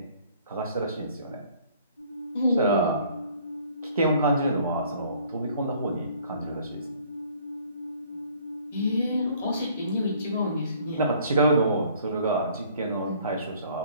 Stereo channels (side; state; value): both; inverted; correlation -0.57